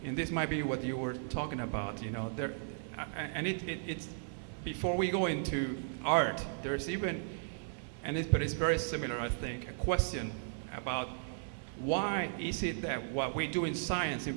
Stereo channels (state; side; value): silent; left; 54 dB below the other